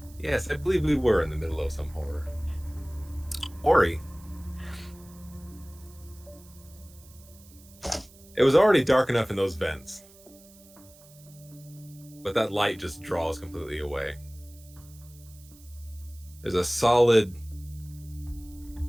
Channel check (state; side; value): noise; right; hiss, 24 dB below the sound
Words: Yes, I believe we were in the middle of some horror. Ori. It was already dark enough in those vents, but that light just draws completely away. There's a solid